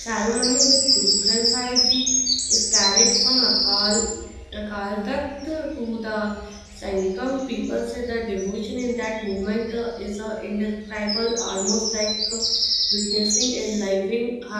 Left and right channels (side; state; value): both; identical; correlation 1.00